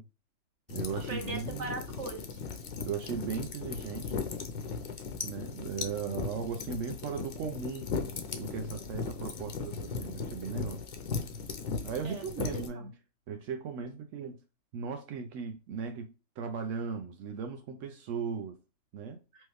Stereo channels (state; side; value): late; left; 2.6 ms